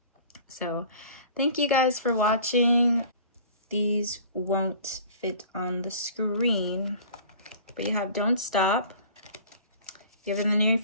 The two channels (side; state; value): both; inverted; correlation -0.45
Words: So thank you guys for watching. These won't fit on the screen, but you have Don't Stop, you have In the Near